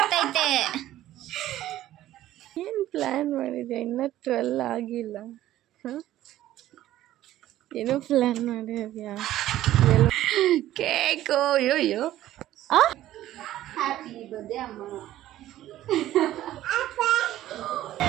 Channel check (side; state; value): left; quieter; 13.8 dB